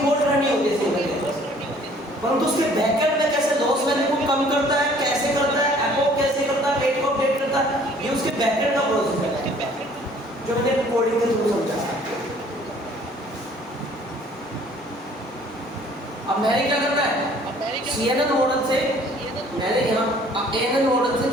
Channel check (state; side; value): normal; both; correlation 0.56